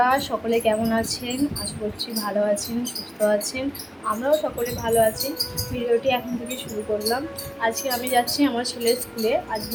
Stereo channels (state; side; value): identical; both; correlation 1.00